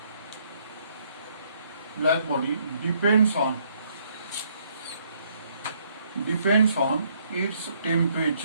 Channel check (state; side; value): inverted; both; correlation -0.69